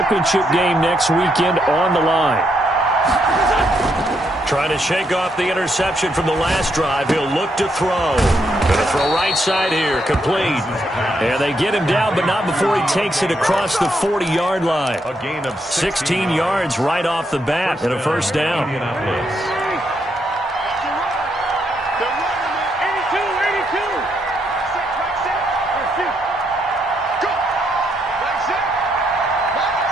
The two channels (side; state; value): both; normal; correlation 0.77